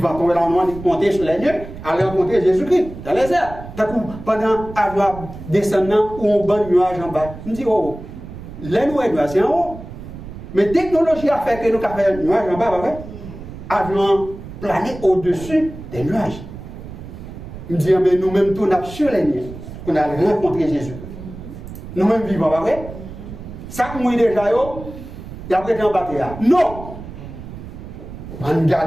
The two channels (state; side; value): noise; right; rumble, 13 dB below the sound